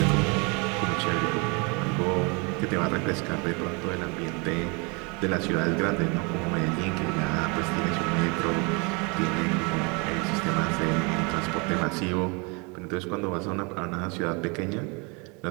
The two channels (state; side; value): quieter; left; 30.9 dB